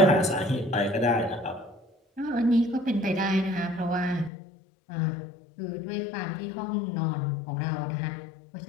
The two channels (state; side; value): drops out; right; at 4.3 s